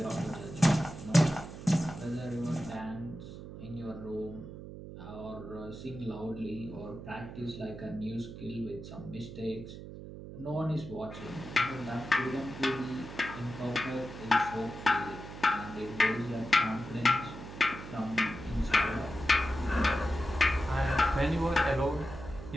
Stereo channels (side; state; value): right; noise; hum, 12 dB below the sound